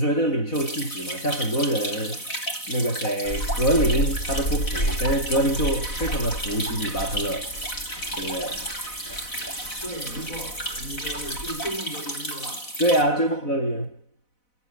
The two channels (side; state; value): right; late; 4.0 ms